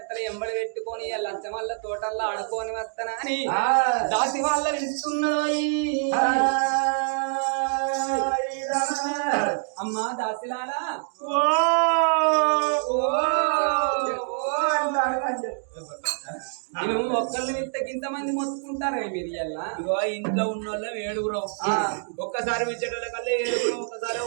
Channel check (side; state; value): left; silent; digital silence